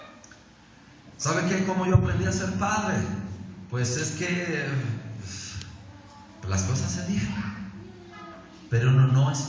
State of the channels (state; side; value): identical; both; correlation 1.00